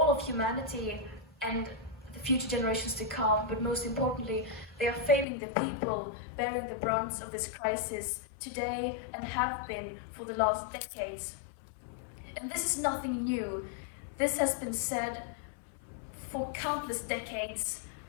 of humanity and the future generations to come, but most importantly, they are failing the people bearing the brunt of this crisis today and have been for the last decades. And this is nothing new. This has been said for countless decades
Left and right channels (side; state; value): right; drops out; at 5.2 s